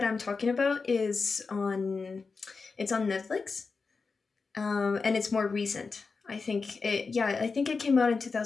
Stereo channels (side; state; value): right; quieter; 4.6 dB